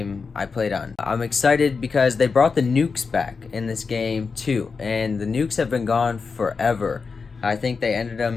I played on. I'm excited because they brought the nukes back in this game too, and the nukes have been gone forever. I think they ended them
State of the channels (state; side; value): quieter; right; 5.0 dB